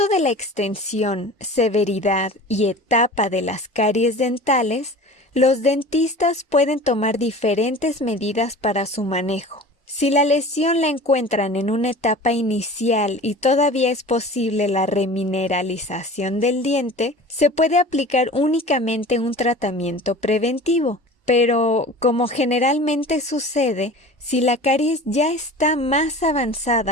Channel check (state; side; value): normal; both; correlation 0.39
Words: de la extensión, severidad y etapa de las caries dentales, los dentistas pueden tomar diferentes medidas para su manejo. Si la lesión la encuentran en una etapa inicial y todavía es posible la remineralización del diente, se puede aplicar únicamente un tratamiento preventivo. Pero, como generalmente sucede, si la caries ya está más